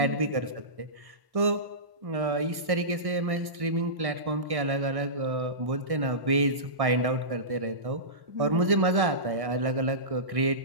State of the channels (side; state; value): left; late; 1.6 ms